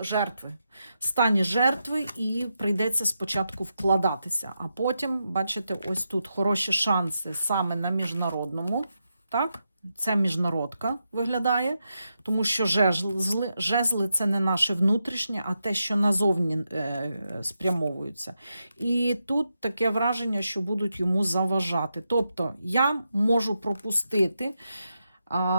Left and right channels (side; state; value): both; inverted; correlation -0.86